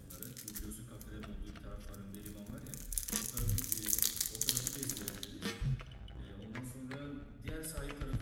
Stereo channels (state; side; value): identical; both; correlation 1.00